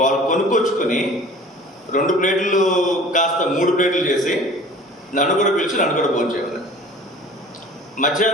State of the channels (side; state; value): both; normal; correlation 0.45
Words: వాళ్ళు కొనుక్కొచ్చుకుని 2 ప్లేట్లు కాస్త 3 ప్లేట్లు చేసి నన్ను కూడా పిలిచి నన్ను కూడా భోంచేయాలి.